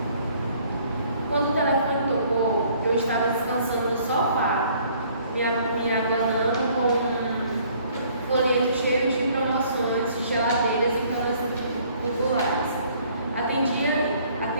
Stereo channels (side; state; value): both; inverted; correlation -0.60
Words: Quando o telefone tocou, eu estava descansando no sofá, me abanando com um folheto cheio de promoções de geladeiras e camas populares. Atendia